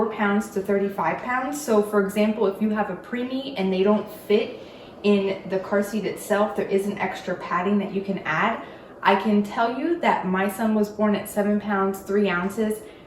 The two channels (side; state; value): both; identical; correlation 1.00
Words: pounds to 35 pounds. So for example, if you have a preemie and they don't fit in the car seat itself, there is an extra padding that you can add. I can tell you that my son was born at 7 pounds 3 ounces,